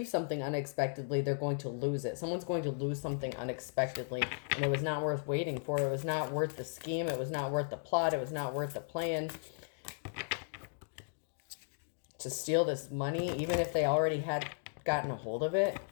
something unexpectedly. They're going to lose it. Someone's going to lose something unexpectedly, and it was not worth waiting for. It was not worth the scheme. It was not worth the plot. It was not worth the plan to steal this money. Even if they already had gotten a hold of it,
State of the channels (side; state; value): right; silent; digital silence